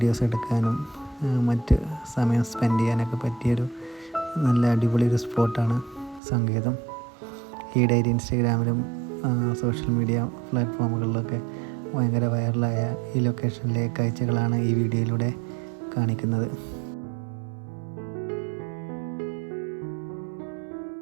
എടുക്കാനും മറ്റ് സമയം സ്പെൻഡ് ചെയ്യാനൊക്കെ പറ്റിയൊരു നല്ല അടിപൊളി ഒരു സ്പോട്ടാണ് സങ്കേതം. ഈയിടെയായിട്ട് ഇൻസ്റ്റഗ്രാമിലും സോഷ്യൽ മീഡിയ പ്ലാറ്റ്ഫോമുകളിലൊക്കെ ഭയങ്കര വൈറലായ ഈ ലൊക്കേഷനിലെ കാഴ്ചകളാണ് ഈ വീഡിയോയിലൂടെ കാണിക്കുന്നത്.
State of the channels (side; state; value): left; drops out; at 6.2 s